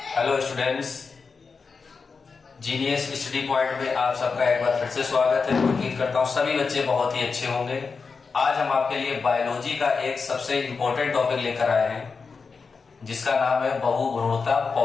Hello students, genius study point में आप सबका एक बार फिर से स्वागत है। उम्मीद करता हूँ सभी बच्चे बहुत ही अच्छे होंगे। आज हम आपके लिए बायोलॉजी का एक सबसे इम्पोर्टेंट टॉपिक लेकर आए हैं जिसका नाम है बहुभ्रूणता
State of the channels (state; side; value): quieter; right; 4.9 dB